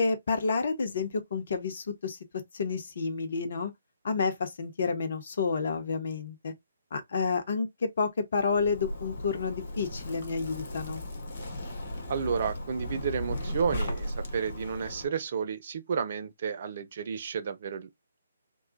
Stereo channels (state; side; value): inverted; both; correlation -0.69